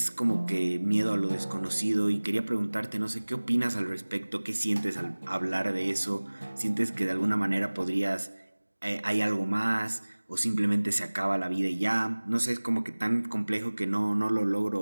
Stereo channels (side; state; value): both; inverted; correlation -1.00